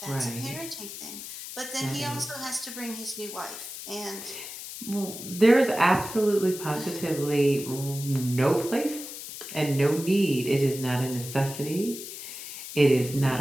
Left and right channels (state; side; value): noise; left; hiss, 10 dB below the sound